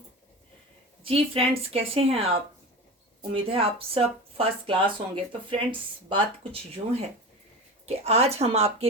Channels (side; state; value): both; normal; correlation 0.29